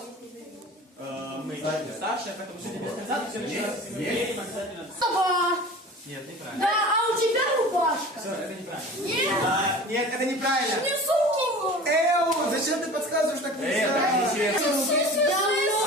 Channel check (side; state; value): both; normal; correlation 0.39